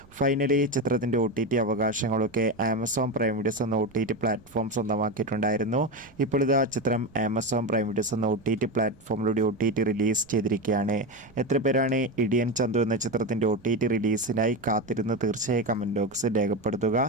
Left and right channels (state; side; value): noise; right; rumble, 26 dB below the sound